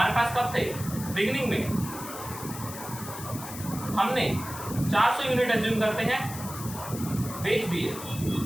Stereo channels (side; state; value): left; noise; hiss, 11 dB below the sound